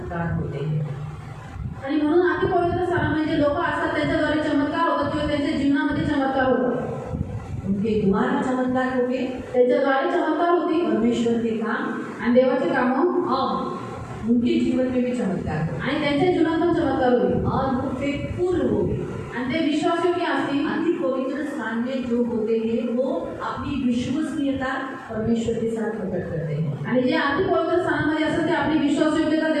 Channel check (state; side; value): identical; both; correlation 1.00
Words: होते हैं। आणि म्हणून अति पवित्र स्थानामध्ये जे लोक असतात त्यांच्याद्वारे चमत्कार होतात किंवा त्यांच्या जीवनामध्ये चमत्कार होतात. उनके द्वारा चमत्कार होते, त्यांच्याद्वारे चमत्कार होती परमेश्वर के काम आणि देवाचे कामं और उनके जीवन में भी चमत्कार होते आणि त्यांच्या जीवनात पण चमत्कार होईल. और वो फेथफुल हो गए। आणि ते विश्वासयोग्य असतील. अति पवित्र स्थान में जो होते हैं वो अपनी विश्वसनीयता परमेश्वर के साथ प्रकट करते हैं। आणि जे अति पवित्र स्थानामध्ये असतात ते आपली विश्वासयोग्यता